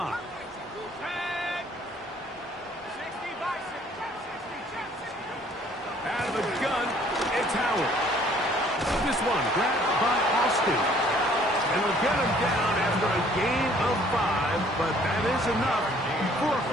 Out of the gun, it's Howard. This one grabbed by Austin. And they'll get him down after a gain of 5, but that is enough for a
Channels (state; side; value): normal; both; correlation 0.58